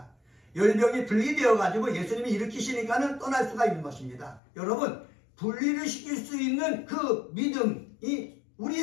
열병이 분리되어 가지고 예수님이 일으키시니까는 떠날 수가 있는 것입니다. 여러분, 분리를 시킬 수 있는 그 믿음이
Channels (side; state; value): right; drops out; at 4.4 s